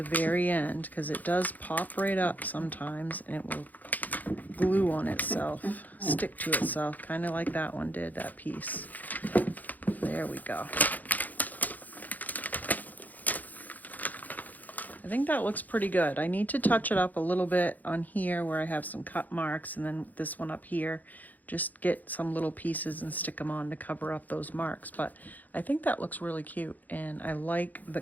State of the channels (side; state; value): right; late; 0.082 ms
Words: very end, because it does pop right up sometimes, and it will glue on itself, stick to itself, kind of like that one did, that piece. There we go. I think that looks pretty good. I need to touch it up a little bit on here where I have some cut marks, and then this one up here. Just get some little pieces and stick them on to cover up those marks. But I think that looks really cute, and I like the